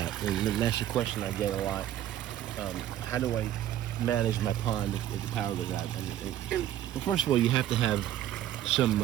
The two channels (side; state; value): left; quieter; 12.1 dB